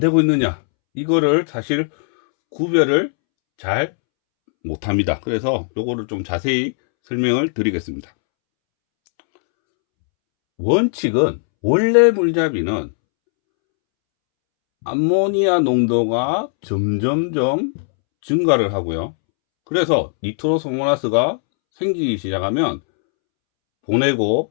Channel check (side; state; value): right; silent; 67 dB below the other